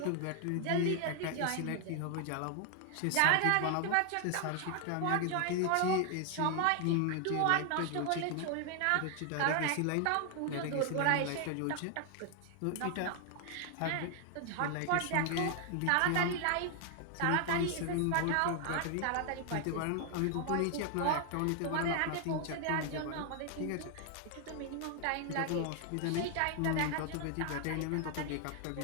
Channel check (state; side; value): different; both; correlation 0.00